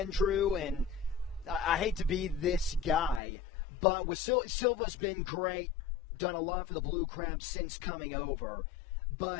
and I hate to be this guy, but with Silva's been great, done a lot for the Blue Crabs since coming over,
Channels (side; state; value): right; drops out; at 3.2 s